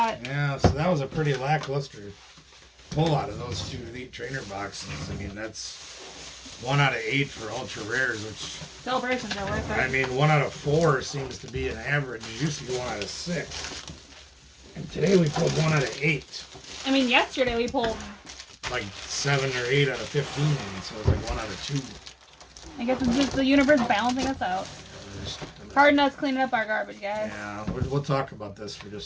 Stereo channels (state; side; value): identical; both; correlation 1.00